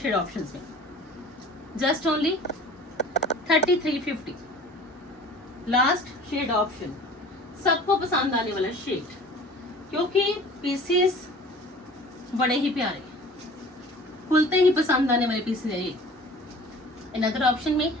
ऑप्शन में, just only 3350। Last shade option, सबको पसंद आने वाला शेड, क्योंकि पीसेस बड़े ही प्यारे, खुलते ही पसंद आने वाले पीसेस है ये। अनदर ऑप्शन में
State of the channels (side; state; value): both; normal; correlation 0.45